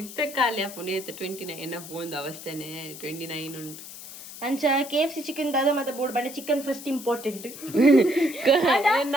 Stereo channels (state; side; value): noise; left; hiss, 13 dB below the sound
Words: ಖಾಲಿ ಆಪುಂಡು 29 ಬೋಂದು ಅವಸ್ಥೆನೆ 29 ಉಂಟು ಅಂಚ KFC ಚಿಕನ್ ದಾದ ಮತ್ತೆ ಬೋರ್ಡ್ ಬಂಡೆ ಚಿಕನ್ ಫಸ್ಟ್ ಇಂಪಾರ್ಟೆಂಟ್